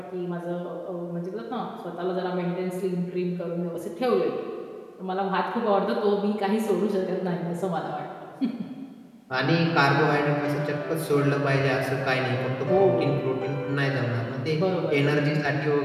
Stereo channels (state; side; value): identical; both; correlation 1.00